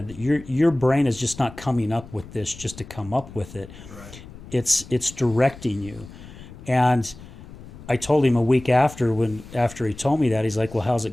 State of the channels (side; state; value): left; noise; rumble, 17 dB below the sound